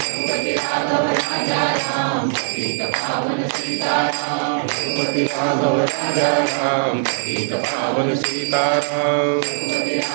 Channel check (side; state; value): left; silent; digital silence